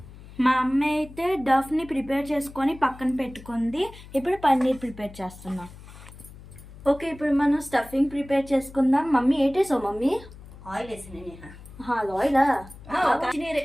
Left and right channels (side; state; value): left; noise; hum, 18 dB below the sound